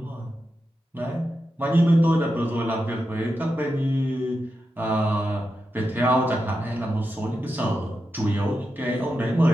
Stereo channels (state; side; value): normal; both; correlation 0.88